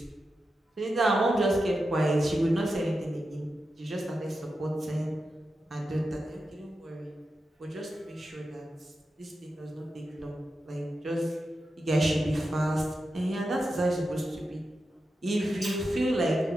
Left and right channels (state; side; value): normal; both; correlation 0.89